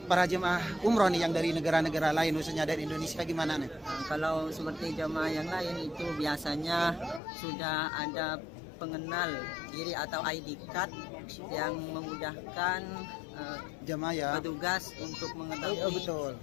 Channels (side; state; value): right; drops out; at 7.2 s